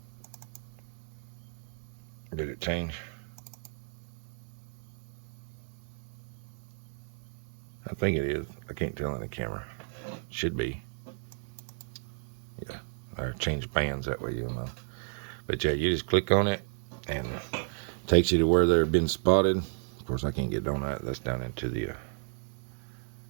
Did it change? I think it is. I can't tell in the camera. Should be. Yeah. Or change bands, that way you'll know. But yeah, you just click on it and it takes you to where they've been spotted. Of course, I can't get on that. That's down into the...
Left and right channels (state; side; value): silent; left; 56 dB below the other